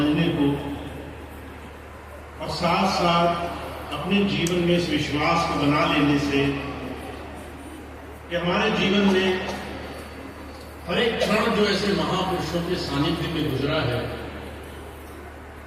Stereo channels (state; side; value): identical; both; correlation 1.00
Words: को और साथ साथ अपने जीवन में इस विश्वास को बना लेने से कि हमारे जीवन में हर एक क्षण जो ऐसे महापुरुषों के सानिध्य में गुजरा है